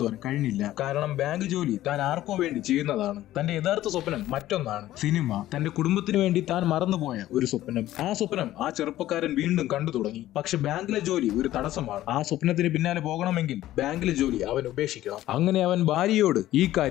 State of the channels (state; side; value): quieter; right; 14.4 dB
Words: കഴിഞ്ഞില്ല. കാരണം ബാങ്ക് ജോലി താൻ ആർക്കോ വേണ്ടി ചെയ്യുന്നതാണ്. തന്റെ യഥാർത്ഥ സ്വപ്നം മറ്റൊന്നാണ്, സിനിമ. തന്റെ കുടുംബത്തിന് വേണ്ടി താൻ മറന്നുപോയ ഒരു സ്വപ്നം. ആ സ്വപ്നം ആ ചെറുപ്പക്കാരൻ വീണ്ടും കണ്ടു തുടങ്ങി. പക്ഷെ ബാങ്കിലെ ജോലി ഒരു തടസ്സമാണ്. ആ സ്വപ്നത്തിന് പിന്നാലെ പോകണമെങ്കിൽ ബാങ്കിലെ ജോലി അവൻ ഉപേക്ഷിക്കണം. അങ്ങനെ അവൻ ഭാര്യയോട് ഈ